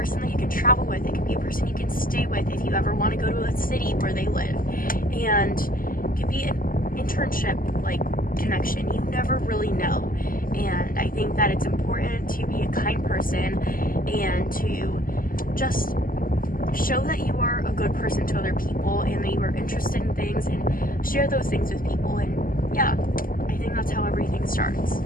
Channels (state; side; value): late; right; 0.41 ms